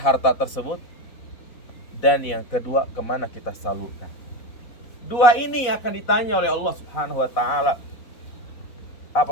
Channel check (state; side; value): late; right; 4.0 ms